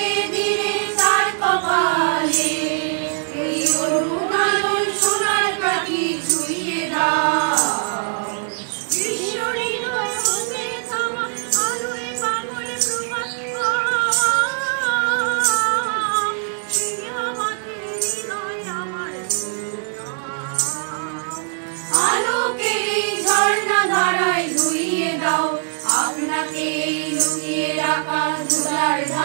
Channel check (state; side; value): silent; left; 65 dB below the other